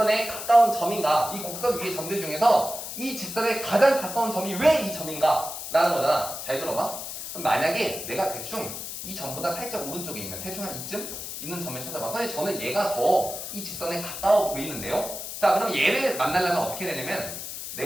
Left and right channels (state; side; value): noise; left; hiss, 8 dB below the sound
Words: 가까운 점인가? 이 곡선 위의 점들 중에서 이 직선에 가장 가까운 점이 왜 이 점인가? 라는 거잖아. 잘 들어봐. 그럼 만약에 내가 대충 이 점보다 살짝 오른쪽에 있는 대충 한 이쯤 있는 점을 찾아봐. 선생님, 저는 얘가 더 이 직선에 가까워 보이는데요. 자, 그럼 얘를 만나려면 어떻게 되냐면